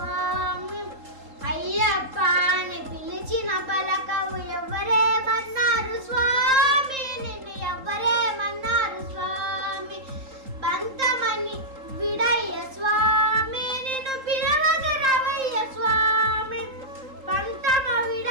అయ్యప్ప అని పిలిచిన పలకవు ఎవరేమన్నారు స్వామి, నిన్ను ఎవరేమన్నారు స్వామి. బంతమని విడయ్య స్వామి, నిన్ను పిలవగరవయ్య స్వామి. పంతమ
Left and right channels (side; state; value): left; late; 3.8 ms